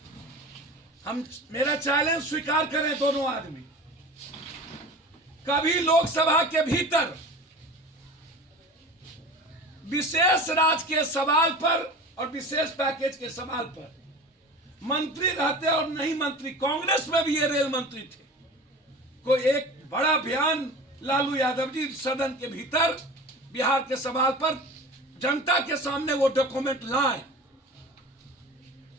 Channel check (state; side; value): normal; both; correlation 0.36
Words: हम, मेरा चैलेंज स्वीकार करें दोनों आदमी, कभी लोकसभा के भीतर विशेष राज्य के सवाल पर और विशेष पैकेज के सवाल पर मंत्री रहते और नहीं मंत्री, कांग्रेस में भी ये रेल मंत्री थे, कोई एक बड़ा बयान लालू यादव जी सदन के भीतर बिहार के सवाल पर जनता के सामने वो डॉक्यूमेंट लाए।